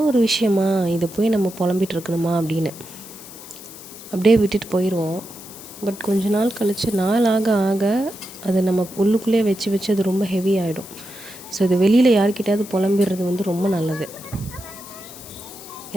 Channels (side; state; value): left; noise; hiss, 16 dB below the sound